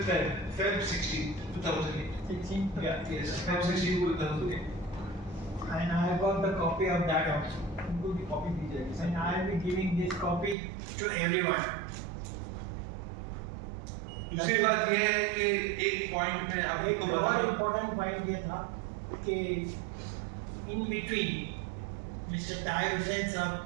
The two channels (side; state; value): left; drops out; at 10.6 s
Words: 16, 2008. 16. Yeah, yes, Feb 16, 2008. And I have got the copy of that also. And I will be giving this copy to everyone. दूसरी बात यह है कि एक point में एक आपको और बता इम्पोर्टेंट पॉइंट ये था कि in between mister Tahir Hussain साहब